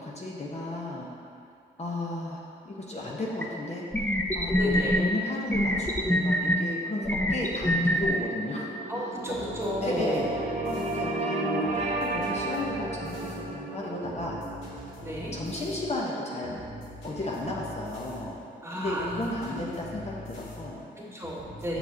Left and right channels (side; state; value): both; normal; correlation 0.57